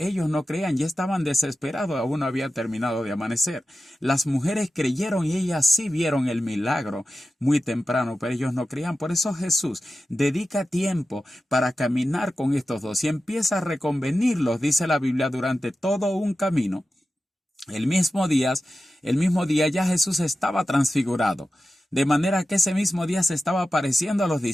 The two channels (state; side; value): normal; both; correlation 0.93